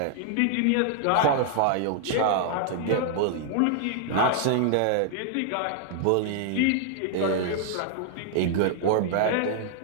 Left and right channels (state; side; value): different; both; correlation -0.01